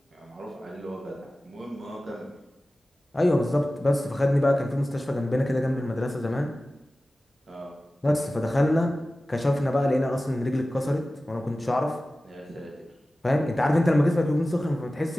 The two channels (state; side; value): normal; both; correlation 0.96